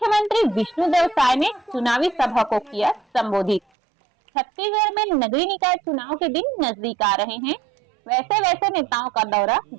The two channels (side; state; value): left; drops out; at 3.6 s